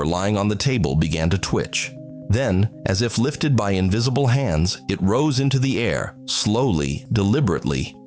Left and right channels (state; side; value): identical; both; correlation 1.00